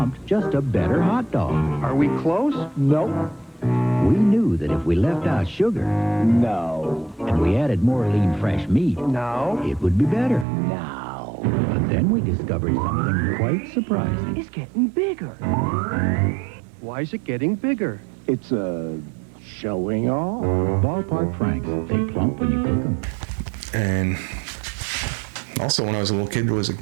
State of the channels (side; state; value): left; drops out; at 10.5 s